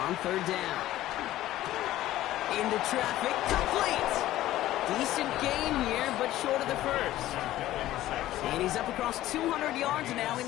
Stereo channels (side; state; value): right; quieter; 14.7 dB